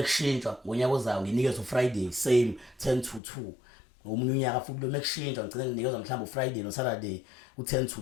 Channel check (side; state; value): right; drops out; at 3.2 s